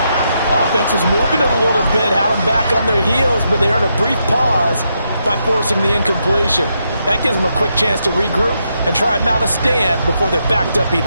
Offense was moving it a little bit, had them back on their heels, but they earned a brief pause by forcing the incompletion. That gives them a quick chance to regroup and try and mount a stand before they're backed up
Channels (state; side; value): inverted; both; correlation -0.81